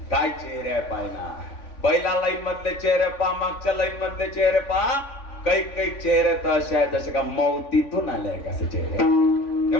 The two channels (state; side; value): late; right; 3.5 ms